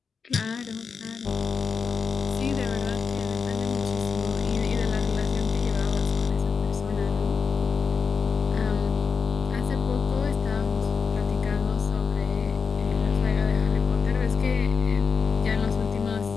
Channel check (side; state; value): right; quieter; 5.6 dB